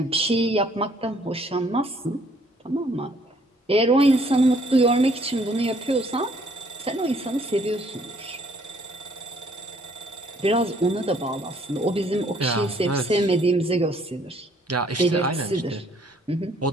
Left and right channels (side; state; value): both; normal; correlation 0.63